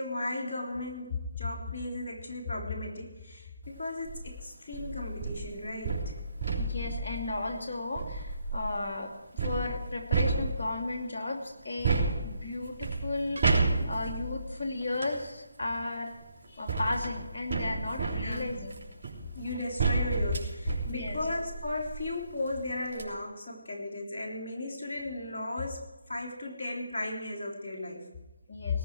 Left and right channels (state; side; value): inverted; both; correlation -0.75